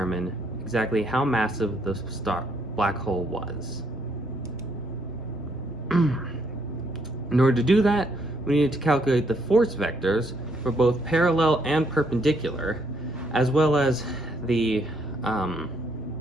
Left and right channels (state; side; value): normal; both; correlation 0.71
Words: exactly how massive the black hole was. In order to do that, we needed to calculate the force vectors for both parallel and perpendicular, as well as the